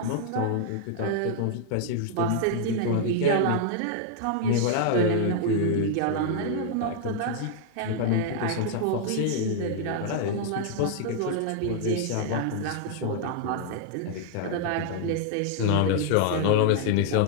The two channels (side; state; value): both; different; correlation -0.01